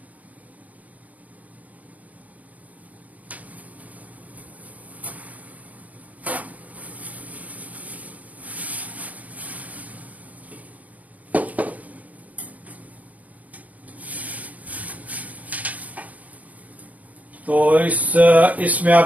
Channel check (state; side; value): late; left; 0.074 ms